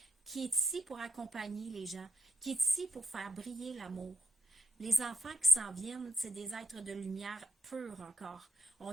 qui est ici pour accompagner les gens, qui est ici pour faire briller l'amour. Les enfants qui s'en viennent, c'est des êtres de lumière pure encore.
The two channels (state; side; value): normal; both; correlation 0.86